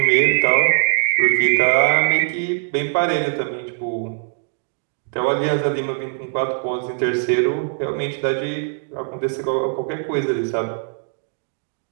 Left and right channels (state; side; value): silent; left; digital silence